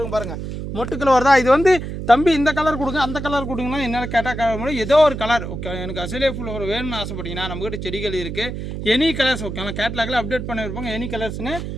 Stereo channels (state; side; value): noise; right; hum, 6 dB below the sound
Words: பாருங்கள். மொட்டுக்கள் வருதா. இது வந்து தம்பி இந்த கலர் கொடுங்க அந்த கலர் கொடுங்கன்னா என்ன கேட்டால் ஏதோ ஒரு கலர் ஓகே. எனக்கு அசேலியா ஃப்ளவர் வேணும்னு ஆசைப்பட்டீங்கன்னா நம்மகிட்ட செடிகள் இருக்குது. Any colours okay. ஆனால் கேட்லாகில் அப்டேட் பண்ணியிருப்பாங்க எனி கலர்ஸ்னு.